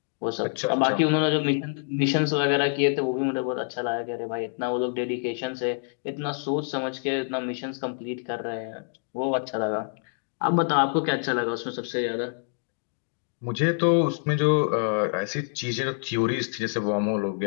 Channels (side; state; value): right; silent; digital silence